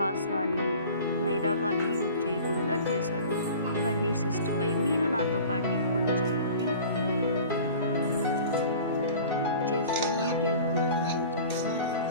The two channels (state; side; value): inverted; both; correlation -0.43